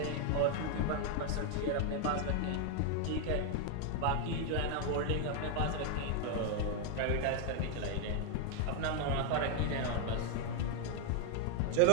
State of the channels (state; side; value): different; both; correlation 0.00